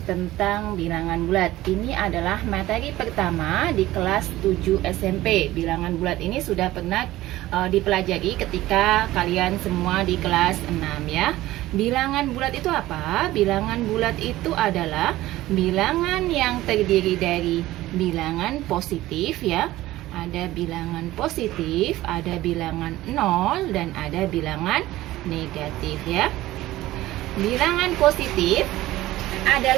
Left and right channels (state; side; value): quieter; left; 16.4 dB